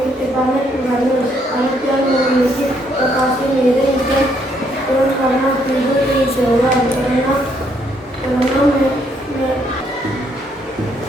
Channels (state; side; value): normal; both; correlation 0.71